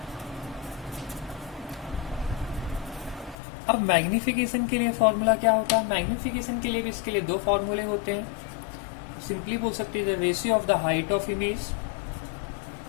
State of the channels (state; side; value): drops out; right; at 3.4 s